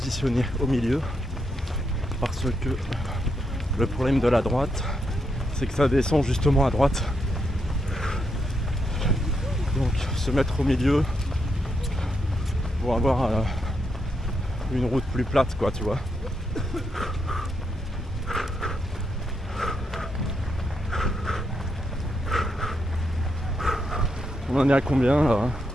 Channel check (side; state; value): both; normal; correlation 0.80